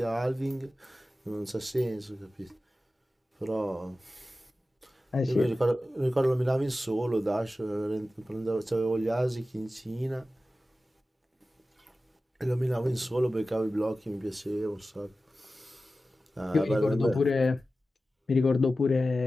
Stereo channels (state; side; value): normal; both; correlation 0.94